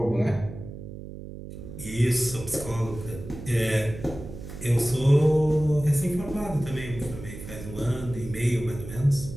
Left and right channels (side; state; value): right; noise; hum, 12 dB below the sound